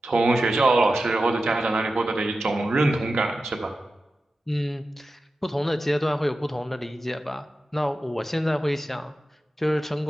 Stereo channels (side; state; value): both; normal; correlation 0.93